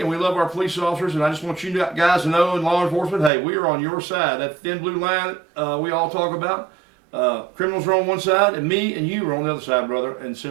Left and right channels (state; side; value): drops out; left; at 3.3 s